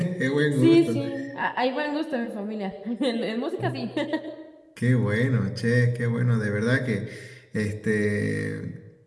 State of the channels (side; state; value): both; identical; correlation 1.00